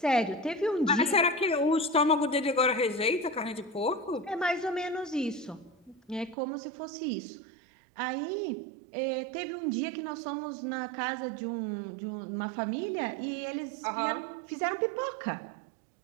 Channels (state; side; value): drops out; left; at 6.4 s